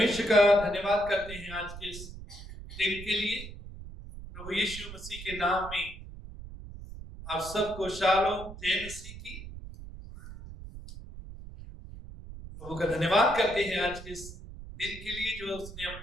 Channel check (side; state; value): right; noise; rumble, 13 dB below the sound